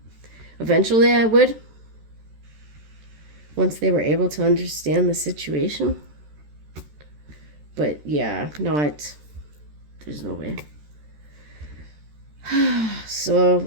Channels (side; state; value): left; late; 13 ms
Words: Eventually I would. Once they were able to understand the situation. But yeah, there's no way.